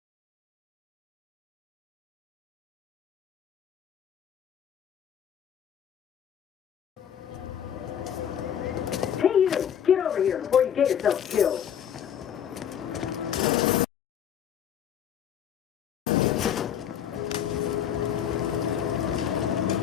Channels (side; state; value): right; quieter; 9.2 dB